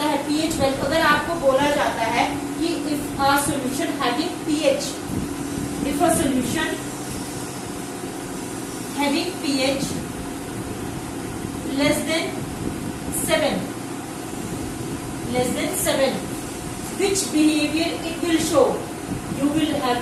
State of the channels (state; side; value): identical; both; correlation 1.00